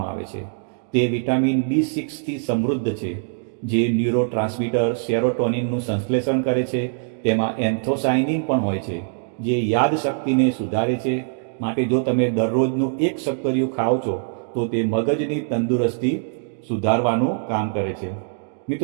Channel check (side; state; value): left; silent; digital silence